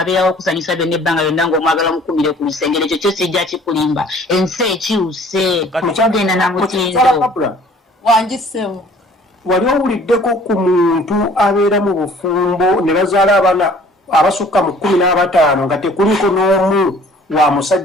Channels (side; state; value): both; normal; correlation 0.53